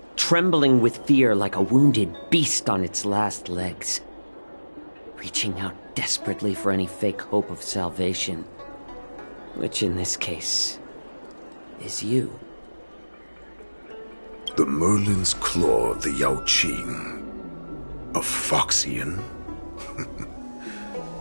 Trembling with fear like a wounded beast on its last legs. Reaching out desperately for any fake hope of salvation. Which in this case, is you. The Merlin's claw of the Yaoqing. A Foxian?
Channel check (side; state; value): both; inverted; correlation -1.00